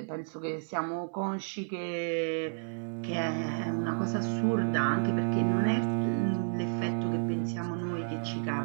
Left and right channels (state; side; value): silent; left; digital silence